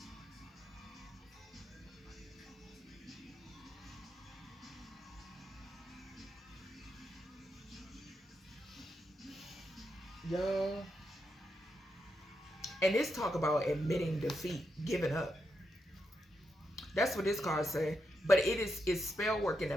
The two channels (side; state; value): both; normal; correlation 0.84